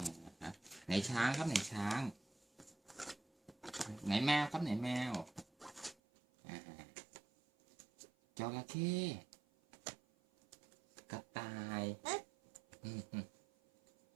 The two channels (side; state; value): left; drops out; at 6.0 s